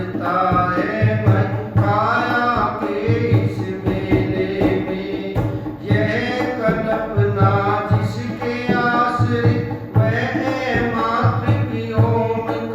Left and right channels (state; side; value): identical; both; correlation 1.00